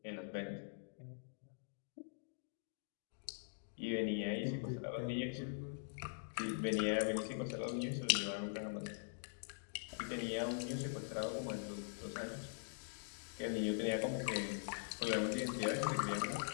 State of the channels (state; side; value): silent; right; digital silence